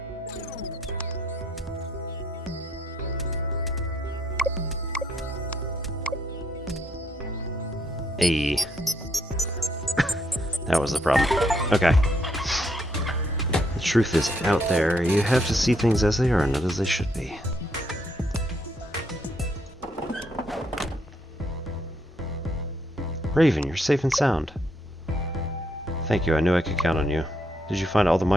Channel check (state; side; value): normal; both; correlation 0.73